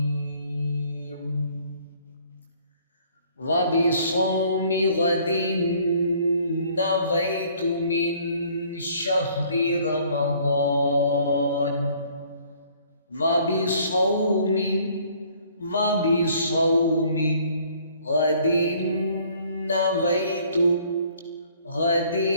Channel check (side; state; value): both; inverted; correlation -0.59